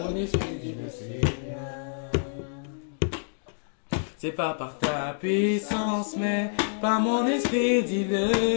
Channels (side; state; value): right; silent; digital silence